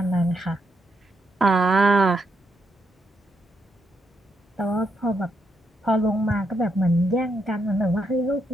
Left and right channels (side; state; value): both; normal; correlation 0.79